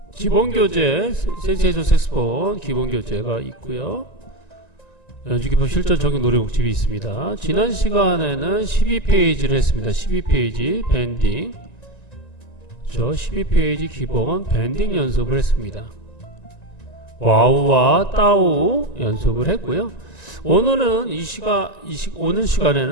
기본 교재 센세이션 색스폰 기본 교재가 있고요. 연주기법 실전 적용 노래곡집이 있습니다. 지난 시간에는 12페이지를 했습니다. 12페이지 밴딩. 저 12페이지 기본 밴딩 연습을 했습니다. 와우와 따우 연습을 했고요. 오늘은 오늘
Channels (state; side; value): late; right; 1.9 ms